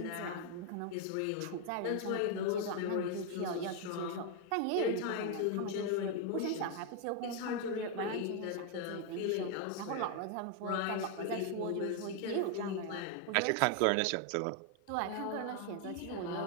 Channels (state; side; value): different; both; correlation 0.01